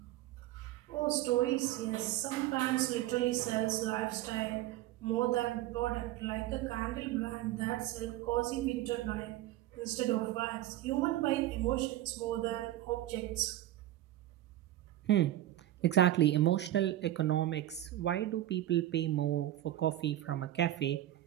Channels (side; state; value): left; quieter; 14.0 dB